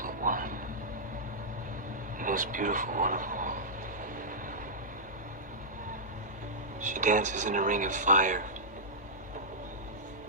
but one. The most beautiful one of all. She dances in a ring of fire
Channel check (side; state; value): both; normal; correlation -0.13